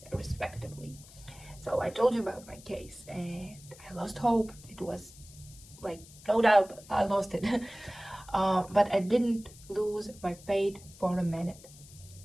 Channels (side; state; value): left; noise; hiss, 20 dB below the sound